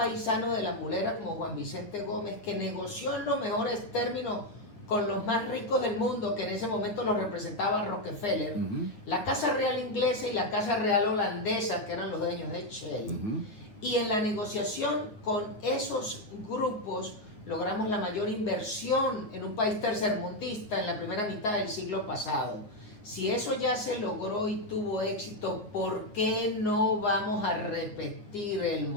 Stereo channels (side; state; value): right; late; 9.1 ms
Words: de La Mulera como Juan Vicente Gómez, que negoció en los mejores términos con los más ricos del mundo, que en ese momento los representaba Rockefeller, la Casa Real inglesa y la Casa Real holandesa, que eran los dueños de Shell. Y en la negociación con esos grupos logramos la mayor inversión en un país tercermundista en la primera mitad del siglo pasado. Si eso ya se logró y tuvo éxito, ¿por qué no vamos a repetir el